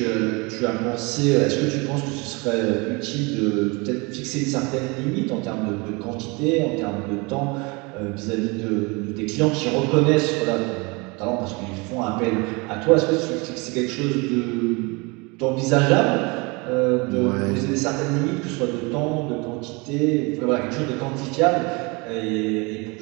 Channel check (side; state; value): left; quieter; 27.8 dB